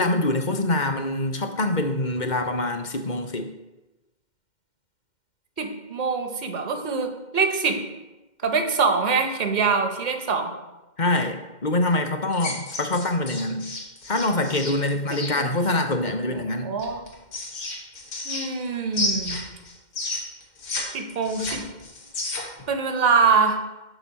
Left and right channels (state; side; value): late; right; 2.1 ms